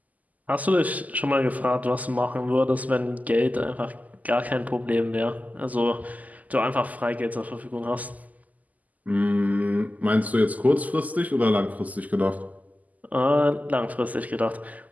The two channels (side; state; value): left; late; 0.078 ms